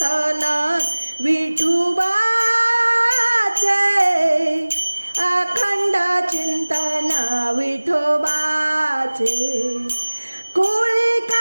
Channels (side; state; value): both; inverted; correlation -1.00